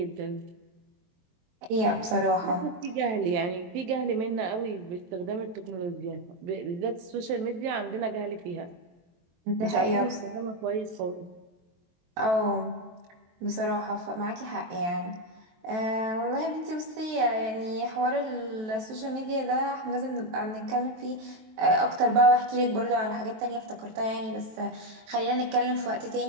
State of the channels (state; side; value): late; left; 23 ms